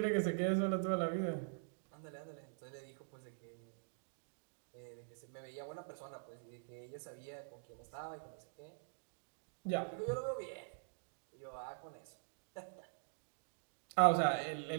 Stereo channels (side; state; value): left; silent; digital silence